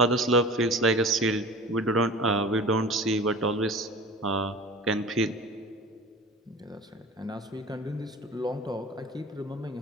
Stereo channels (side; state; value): both; normal; correlation 0.38